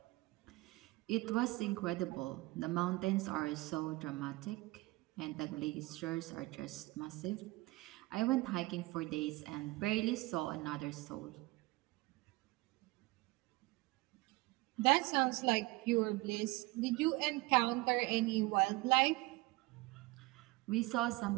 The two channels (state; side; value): quieter; left; 21.7 dB